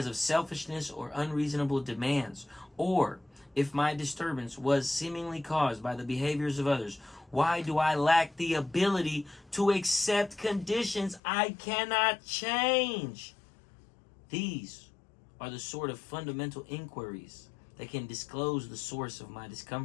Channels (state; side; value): drops out; right; at 11.2 s